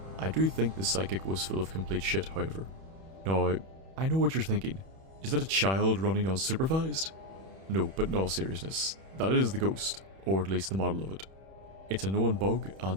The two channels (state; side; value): late; left; 31 ms